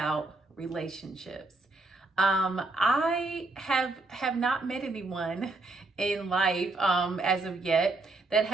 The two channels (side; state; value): left; quieter; 3.1 dB